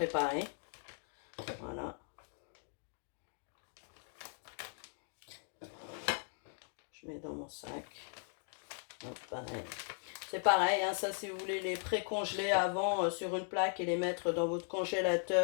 Voilà. Je mets dans mon sac. Donc pareil. C'est pareil, hein, ça si vous voulez les pré-congeler avant sur une plaque et les mettre dans votre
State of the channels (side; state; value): right; silent; 52 dB below the other